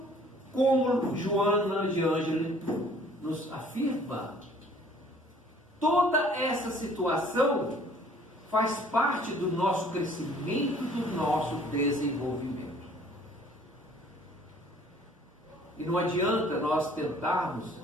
como Joana de Ângeles nos afirma, toda essa situação faz parte do nosso crescimento, do nosso desenvolvimento. E não adianta nós tentarmos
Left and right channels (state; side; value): normal; both; correlation 0.55